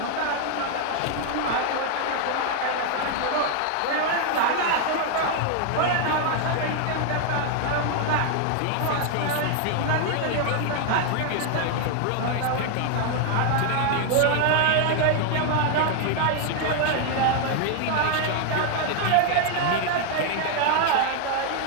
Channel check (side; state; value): both; different; correlation 0.00